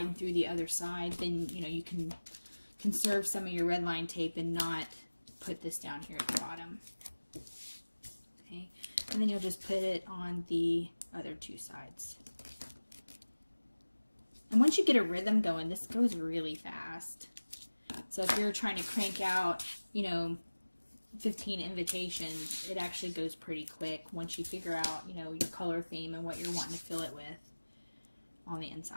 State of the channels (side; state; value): both; inverted; correlation -1.00